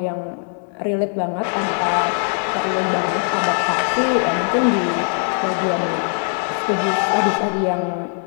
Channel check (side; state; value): right; silent; 58 dB below the other